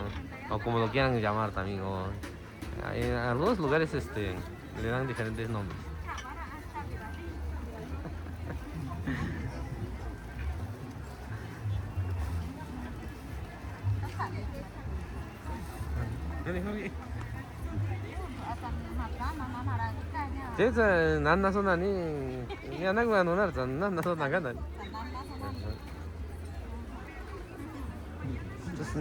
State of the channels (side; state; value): both; identical; correlation 1.00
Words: O como lo quieran llamar también. O, en algunos lugares le dan diferentes nombres. Jadi nana so nani, ni anak gua nunar, nana so naga nani. Terus